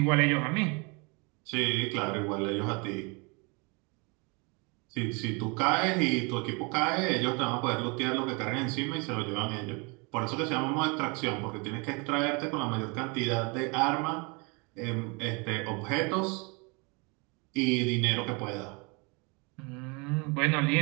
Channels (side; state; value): left; quieter; 30.3 dB